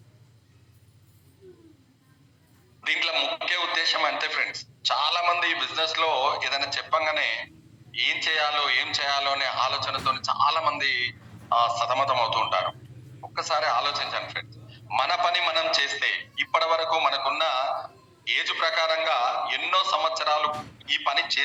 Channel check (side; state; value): both; identical; correlation 1.00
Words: దీంట్లో ముఖ్య ఉద్దేశం అంతే ఫ్రెండ్స్, చాలా మంది ఈ బిజినెస్ లో ఏదైనా చెప్పంగానే ఏం చేయాలో అనే ఆలోచనతో చాలా మంది సతమతం అవుతూ ఉంటారు. ఒక్కసారి ఆలోచించండి ఫ్రెండ్స్, మన పని మనం చేస్తే ఇప్పటి వరకు మనకున్న ఏజ్ ప్రకారంగా ఎన్నో సంవత్సరాలు ఈ పని